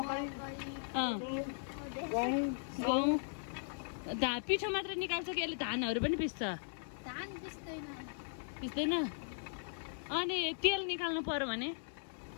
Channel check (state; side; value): silent; right; digital silence